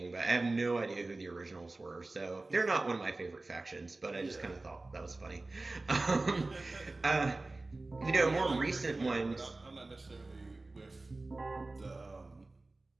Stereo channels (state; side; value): quieter; left; 3.1 dB